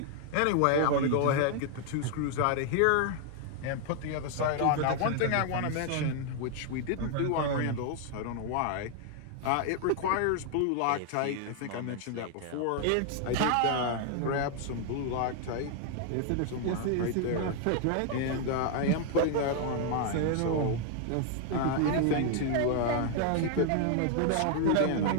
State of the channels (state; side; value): different; both; correlation 0.00